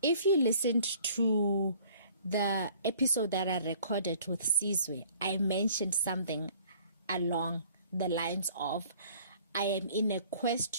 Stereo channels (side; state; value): both; inverted; correlation -0.55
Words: If you listened to the episode that I recorded with Sizwe, I mentioned something along the lines of, I am in a